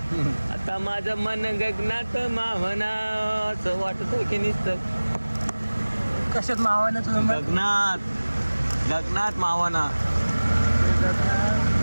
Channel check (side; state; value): both; inverted; correlation -1.00